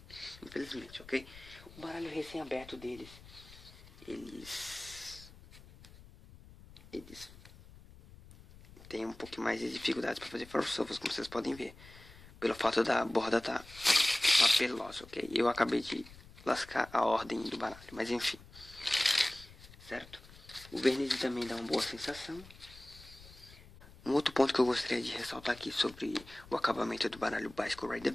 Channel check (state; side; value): noise; left; rumble, 20 dB below the sound